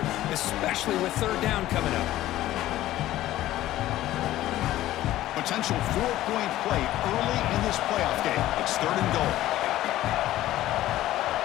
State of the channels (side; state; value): right; quieter; 14.6 dB